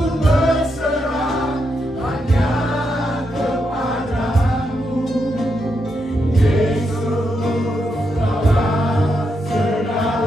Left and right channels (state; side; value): normal; both; correlation 0.82